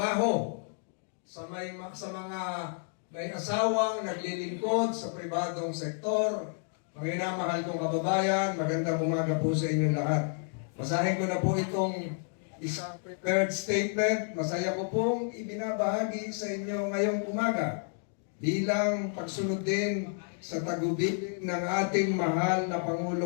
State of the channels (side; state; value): right; silent; 57 dB below the other